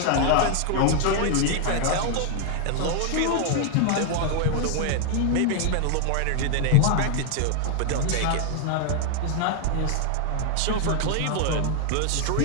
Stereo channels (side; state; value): both; different; correlation 0.00